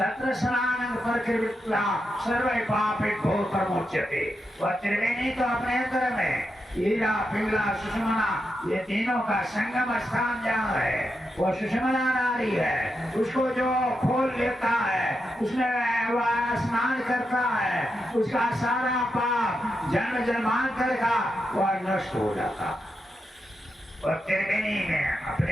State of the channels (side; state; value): both; normal; correlation 0.86